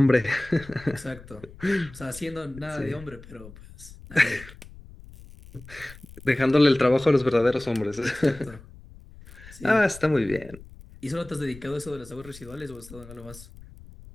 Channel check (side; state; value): left; noise; rumble, 19 dB below the sound